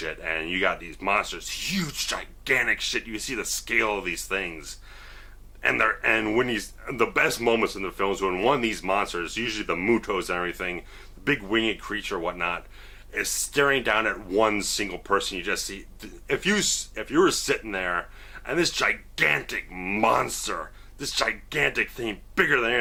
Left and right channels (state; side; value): identical; both; correlation 1.00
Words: and you got these monsters, huge, gigantic shit. You see the scale of these things, and when the best moments in the film is when one of these monsters, usually the Mutos and everything, the big winged creature, whatnot, is staring down at one single person. You just see, if you were sitting there, and this gigantic monster, this gigantic thing, bigger than